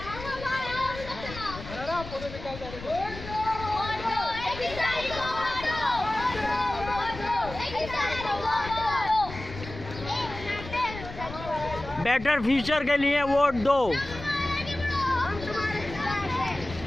बेटर फ्यूचर के लिए वोट दो।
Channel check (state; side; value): noise; left; rumble, 12 dB below the sound